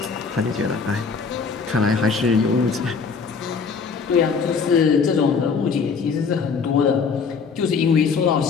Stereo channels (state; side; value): quieter; right; 5.4 dB